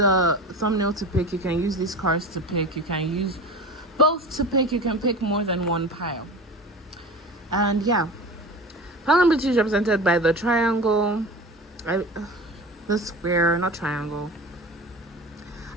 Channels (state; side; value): normal; both; correlation 0.32